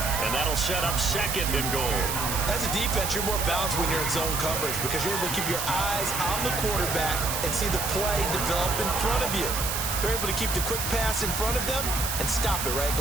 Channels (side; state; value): right; noise; hiss, 2 dB below the sound